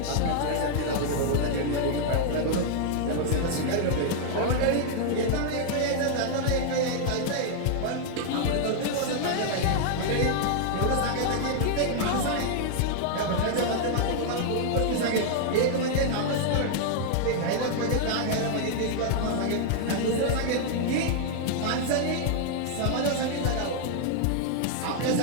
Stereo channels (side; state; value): both; different; correlation 0.00